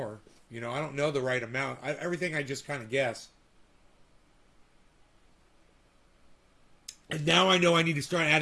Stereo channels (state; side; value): identical; both; correlation 1.00